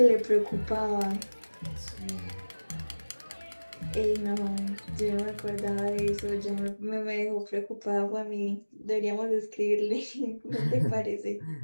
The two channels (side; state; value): both; inverted; correlation -1.00